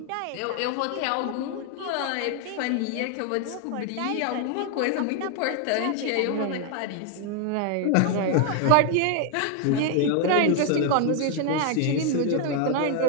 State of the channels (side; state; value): both; different; correlation 0.00